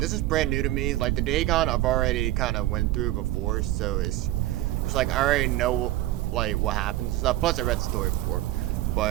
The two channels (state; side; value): quieter; left; 15.9 dB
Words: is brand new to me. The Dagon I've already kind of went through before, so it's I already know, what happens and stuff. Plus, I read the story before.